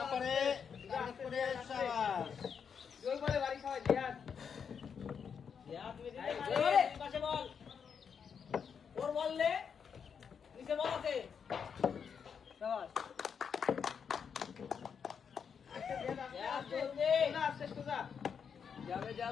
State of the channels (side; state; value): right; quieter; 6.8 dB